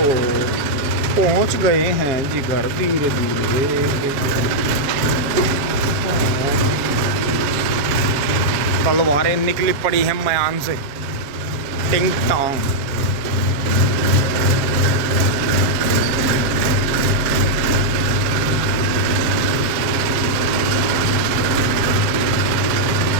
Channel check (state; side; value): late; left; 7.2 ms